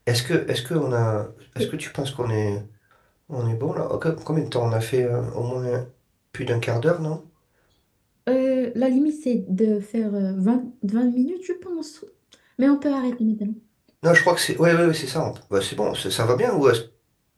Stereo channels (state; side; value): identical; both; correlation 1.00